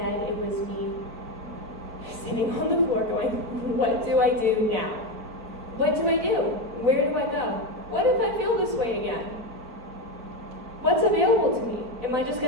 it was me sitting on the floor going, what do I do now? What do I do? Where do I go? What if I feel this way again? What's available to me? Am I just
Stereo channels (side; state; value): left; late; 4.4 ms